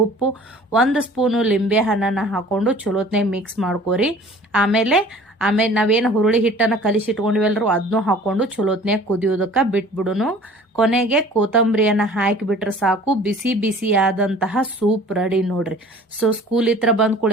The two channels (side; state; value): both; normal; correlation 0.47